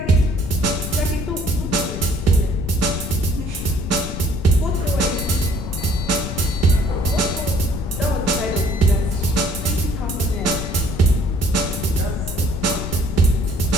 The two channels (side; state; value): left; noise; rumble, 7 dB below the sound